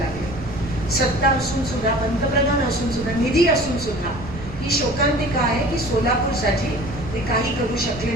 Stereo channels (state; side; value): noise; right; rumble, 12 dB below the sound